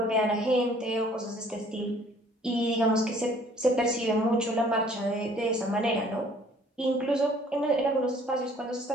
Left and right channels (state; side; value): normal; both; correlation 0.57